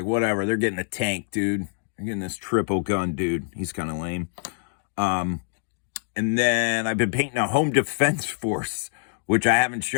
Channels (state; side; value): silent; right; digital silence